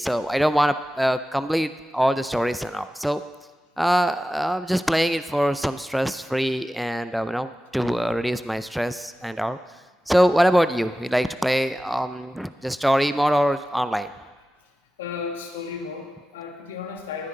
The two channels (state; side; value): normal; both; correlation 0.94